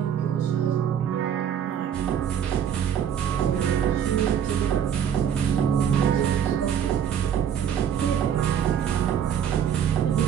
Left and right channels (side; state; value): left; quieter; 8.8 dB